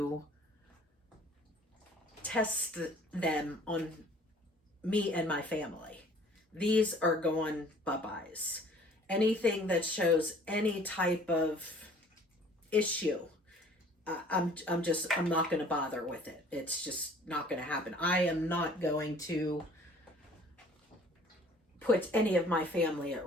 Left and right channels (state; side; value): normal; both; correlation 0.53